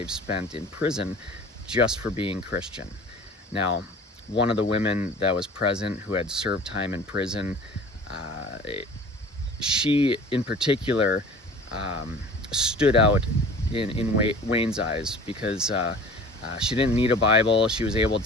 spent in prison just for being Christian. Now, one of the women that was present who had served time in prison, she in particular stood out in Wayne's eyes because she didn't need a Bible. She was able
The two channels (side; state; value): both; normal; correlation 0.43